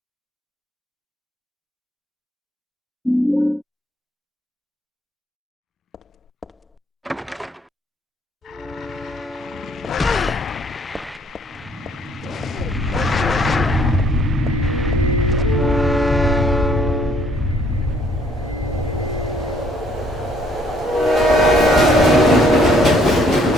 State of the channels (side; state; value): both; normal; correlation 0.63